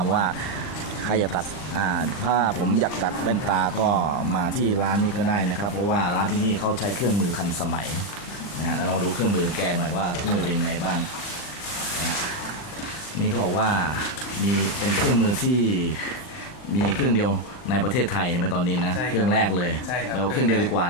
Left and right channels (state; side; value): late; right; 40 ms